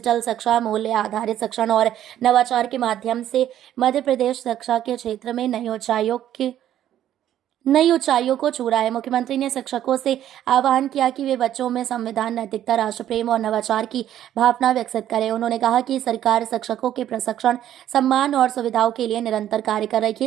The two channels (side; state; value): left; quieter; 11.5 dB